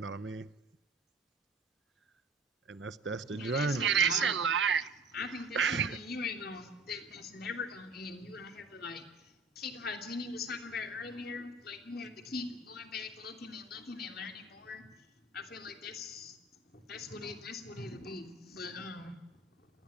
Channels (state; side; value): quieter; left; 3.3 dB